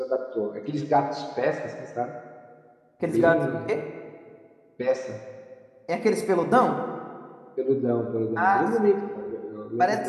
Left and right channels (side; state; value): both; identical; correlation 1.00